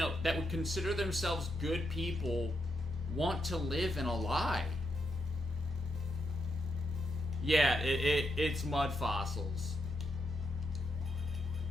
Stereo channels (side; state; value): both; normal; correlation 0.81